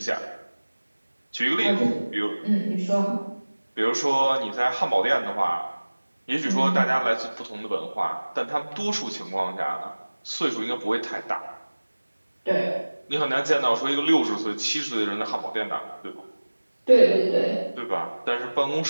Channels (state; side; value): inverted; both; correlation -1.00